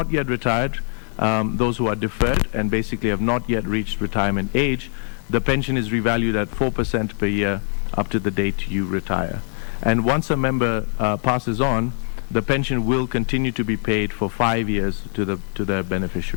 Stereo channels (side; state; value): right; silent; 58 dB below the other